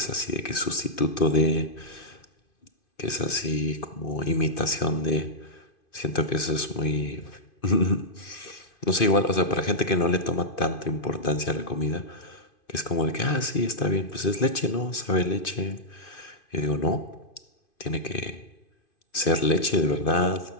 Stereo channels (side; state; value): right; late; 2.5 ms